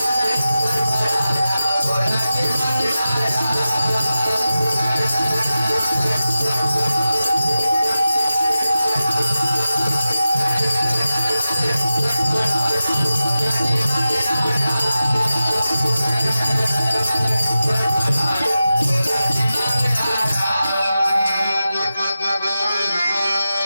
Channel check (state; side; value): inverted; both; correlation -0.93